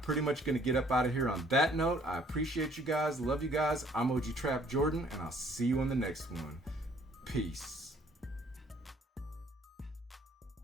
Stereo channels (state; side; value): normal; both; correlation 0.60